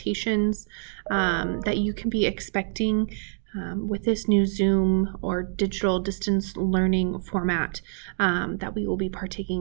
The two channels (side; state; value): left; silent; digital silence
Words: that you can be expecting with this new Zoom or digital distance learning format that we will be